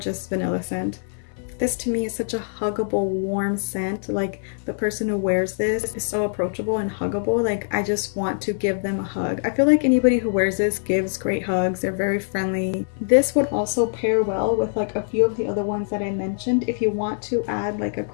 vanilla scent. This to me is such a huggable, warm scent. Like the person who wears this is so approachable and huggable. Like I just want to give them a hug. I feel like anybody who wears this gives great hugs. They're very friendly. This would also pair well with like a few of the other ones that I mentioned. If you want to add like a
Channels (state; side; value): silent; right; 63 dB below the other